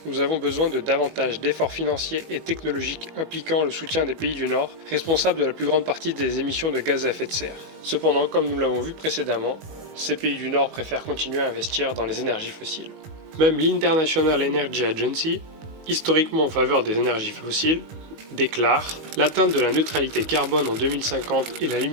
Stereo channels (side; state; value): left; late; 19 ms